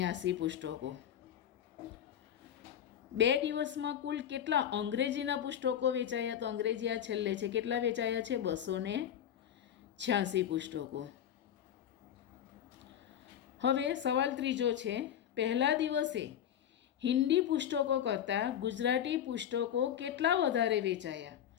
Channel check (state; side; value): quieter; right; 9.9 dB